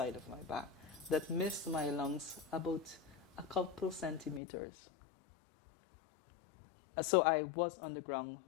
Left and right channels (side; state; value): right; drops out; at 4.4 s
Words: of my back, that missed my lungs about a couple centimeters. So I was on the ground